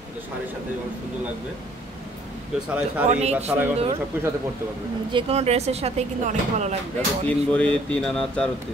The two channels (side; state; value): both; normal; correlation 0.60